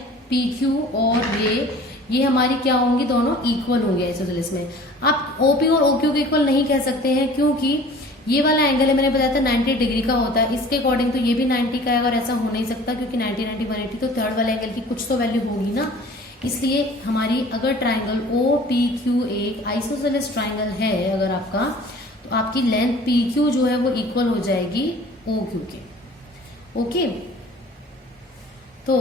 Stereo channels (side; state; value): both; normal; correlation 0.47